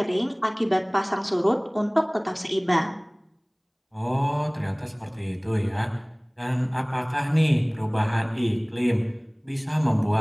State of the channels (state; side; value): identical; both; correlation 1.00